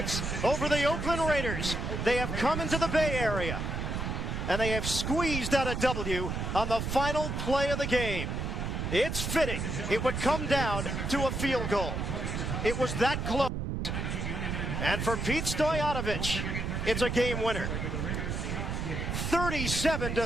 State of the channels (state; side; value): noise; right; rumble, 2 dB below the sound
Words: over the Oakland Raiders. They have come into the Bay Area, and they have squeezed out a W on the final play of the game. It's fitting. It would come down to a field goal. It was that close. And for Pete Stoyanovich, it's a game winner.